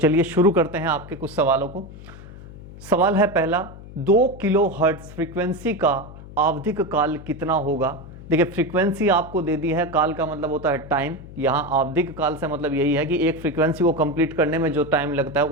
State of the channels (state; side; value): noise; left; hum, 16 dB below the sound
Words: शुरू करते हैं आपके कुछ सवालों को। सवाल है पहला, 2 किलोहर्ट्ज फ्रीक्वेंसी का आवधिक काल कितना होगा। देखिए, फ्रीक्वेंसी आपको दे दी है, काल का मतलब होता है टाइम। यहाँ आवधिक काल से मतलब यही है कि एक फ्रीक्वेंसी को कंप्लीट करने में जो टाइम लगता है